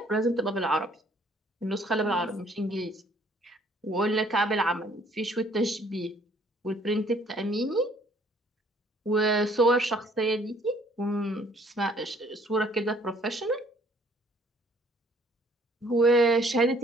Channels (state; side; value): normal; both; correlation 0.60